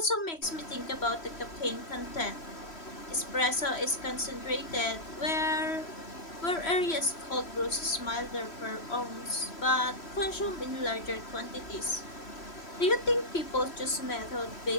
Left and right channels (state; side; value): late; right; 3.0 ms